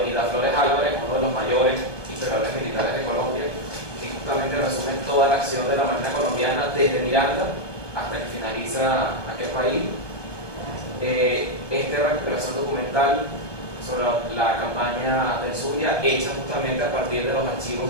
Flores Álvarez, uno de los mayores historiadores militares de Colombia, que justamente resume toda la acción de la Marina colombiana desde Miranda hasta que finaliza aquel país. Esta recuperación documental sobre la campaña del Zulia, hecha justamente a partir de los archivos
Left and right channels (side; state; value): right; late; 1.2 ms